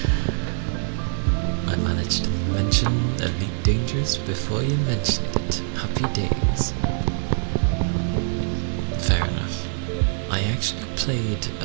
I managed to mention Elite Dangerous before you mentioned it. Happy days. Fair enough. I actually played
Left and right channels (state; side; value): silent; left; digital silence